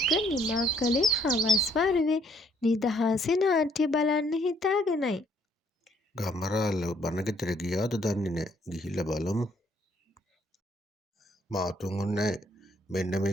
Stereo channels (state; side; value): normal; both; correlation 0.67